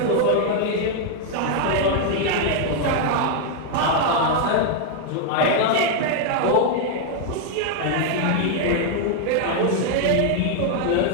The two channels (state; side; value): different; both; correlation 0.00